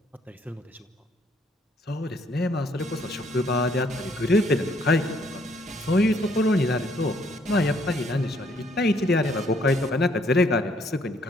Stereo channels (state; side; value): normal; both; correlation 0.66